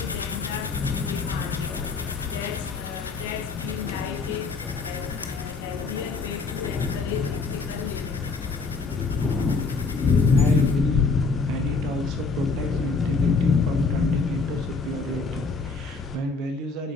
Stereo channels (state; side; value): quieter; right; 4.3 dB